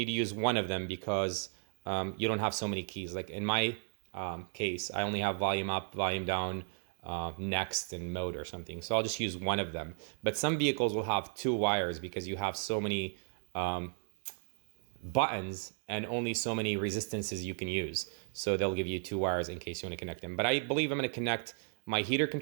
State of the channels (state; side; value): silent; left; 55 dB below the other